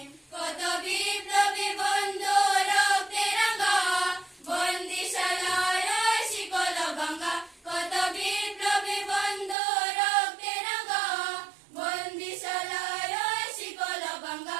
কত বিপ্লবী বন্ধু রক্তে রাঙা, বন্দিশালার শিকল ভাঙা, কত বিপ্লবী বন্ধু রক্তে রাঙা, বন্দিশালার শিকল ভাঙা।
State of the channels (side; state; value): left; drops out; at 9.6 s